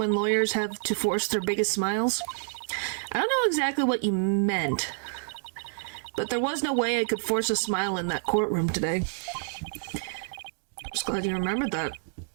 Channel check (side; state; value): left; silent; digital silence